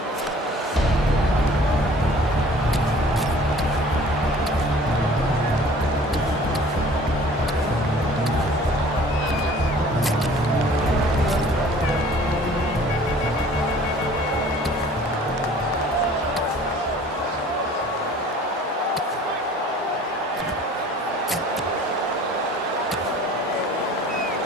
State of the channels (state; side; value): normal; both; correlation 0.49